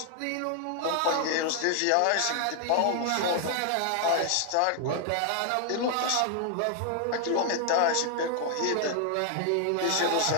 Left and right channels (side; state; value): both; different; correlation 0.00